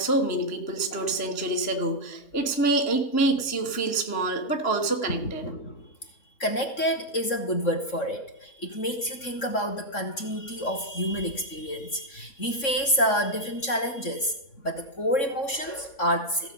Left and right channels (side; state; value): right; late; 3.6 ms